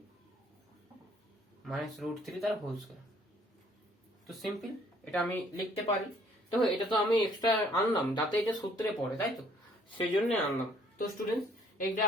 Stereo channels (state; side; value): normal; both; correlation 0.62